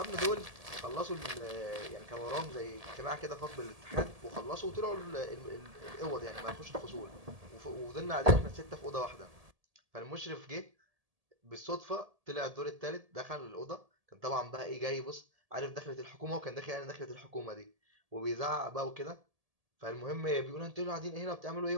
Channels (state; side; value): late; left; 1.7 ms